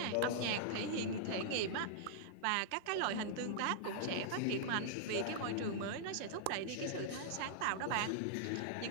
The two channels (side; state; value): both; different; correlation -0.01